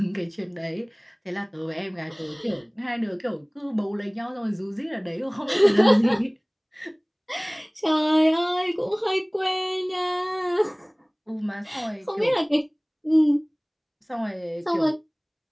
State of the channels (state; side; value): identical; both; correlation 1.00